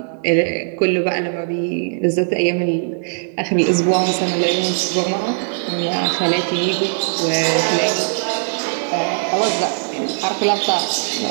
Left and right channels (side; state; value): left; silent; digital silence